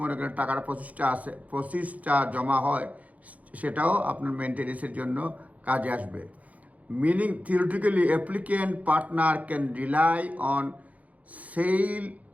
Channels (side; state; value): left; late; 0.071 ms